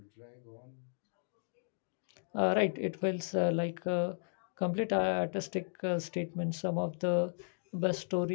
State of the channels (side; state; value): right; silent; digital silence